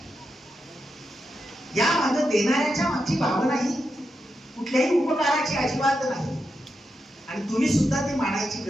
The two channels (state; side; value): normal; both; correlation 0.86